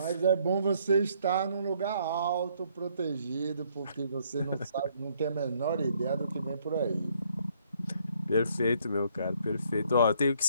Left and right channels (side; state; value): both; inverted; correlation -0.67